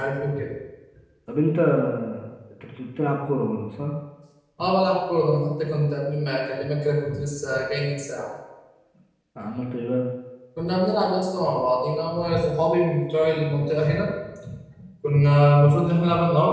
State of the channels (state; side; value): identical; both; correlation 1.00